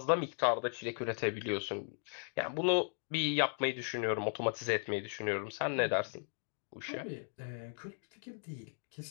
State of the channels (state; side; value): silent; right; 53 dB below the other